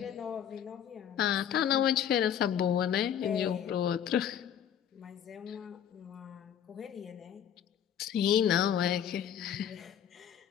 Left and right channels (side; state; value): right; quieter; 9.3 dB